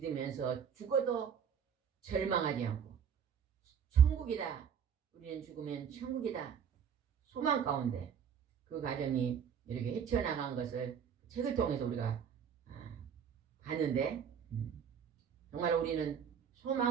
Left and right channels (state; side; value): quieter; left; 7.7 dB